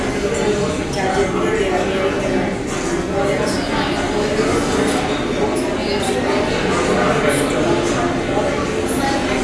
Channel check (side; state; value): both; identical; correlation 1.00